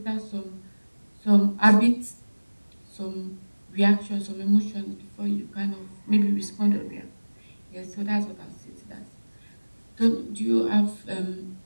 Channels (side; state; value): both; inverted; correlation -1.00